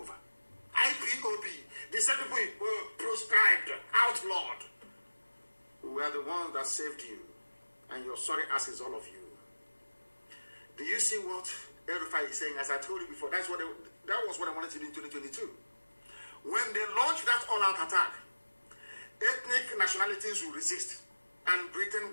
IPOB, the same people were proscribed, outlawed. We are the ones that saved you. And your sorry asses, all of you. Do you see what El Rufai is saying? As I told you before, that was what I wanted to do in 2022. When they launched that all-out attack, ethnic nationalities will resist. And Britain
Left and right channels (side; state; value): both; inverted; correlation -1.00